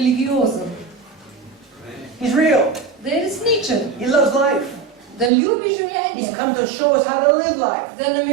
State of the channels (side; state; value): left; drops out; at 5.3 s